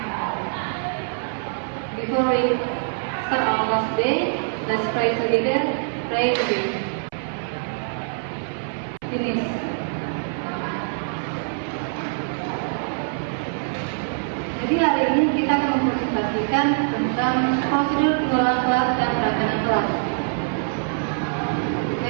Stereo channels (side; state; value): left; silent; 63 dB below the other